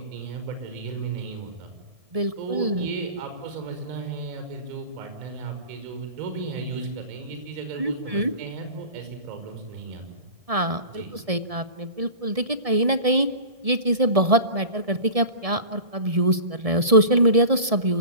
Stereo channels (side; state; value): left; late; 1.7 ms